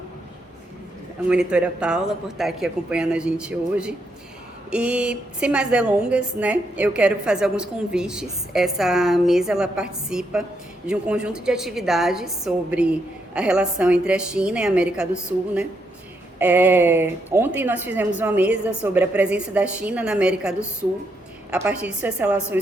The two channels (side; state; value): both; normal; correlation 0.79